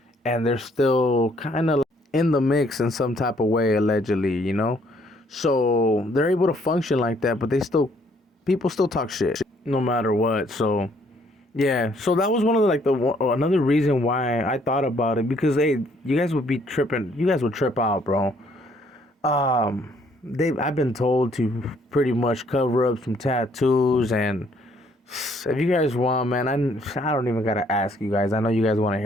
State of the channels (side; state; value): both; normal; correlation 0.65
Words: and they're still kind of in the mix in some type of way, allegedly. So they're able to function like that, but people still talk shit no matter what. So yeah, so that was one of another reason why I thought about it, because hey, you guys would be tripping. You guys would trip out, bro. I've been told to pretty much cover up some tattoos, and if you guys want, man, I don't even gotta ask you guys. I know you guys want to